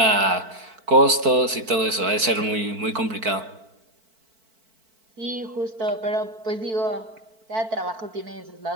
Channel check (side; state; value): left; late; 4.5 ms